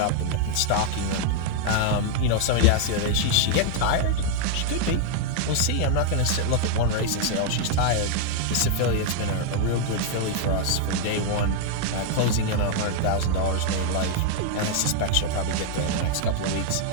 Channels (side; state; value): both; different; correlation 0.00